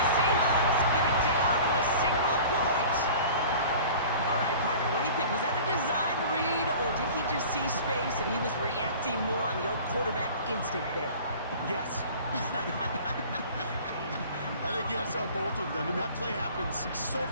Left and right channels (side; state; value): both; inverted; correlation -0.43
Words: Seahawks get it down to a single point. All right, partner, what do you think? Was that a design read, or did he just see space and he was reacting more on the old quarterback instinct there? Yes. I think yes on both of them, and that play happens so